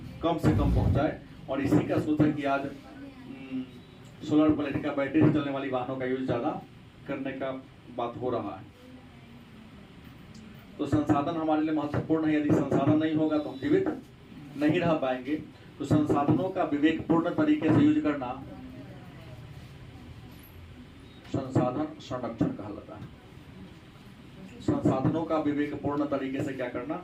कम से कम पहुंचाए। और इसी का सोच है कि आज सोलर प्लेट का बैटरी से चलने वाली वाहनों का यूज ज़्यादा करने का बात हो रहा है। तो संसाधन हमारे लिए महत्वपूर्ण है। यदि संसाधन नहीं होगा तो हम जीवित नहीं रह पाएंगे। तो संसाधनों का विवेकपूर्ण तरीके से यूज करना संसाधन संरक्षण कहलाता है। संसाधनों का विवेकपूर्ण तरीके से क्या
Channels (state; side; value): identical; both; correlation 1.00